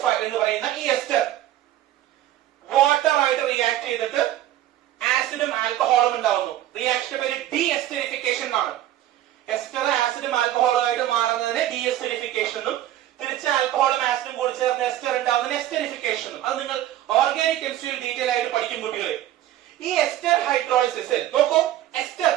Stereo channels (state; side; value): quieter; left; 13.3 dB